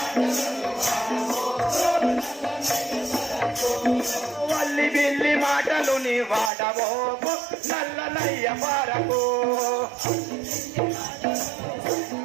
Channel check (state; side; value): drops out; left; at 6.5 s